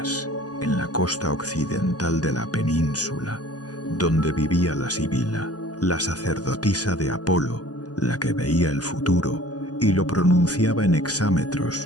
en la costa occidental de la península, donde vivía la Sibila, la sacerdotisa de Apolo, la que veía el futuro y lo pronunciaba en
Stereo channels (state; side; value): late; right; 0.68 ms